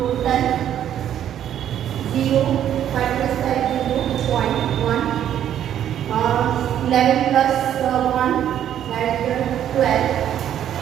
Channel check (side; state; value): left; quieter; 10.4 dB